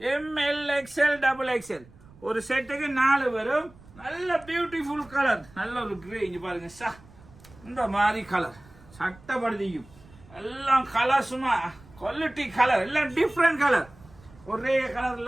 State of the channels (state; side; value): noise; right; rumble, 23 dB below the sound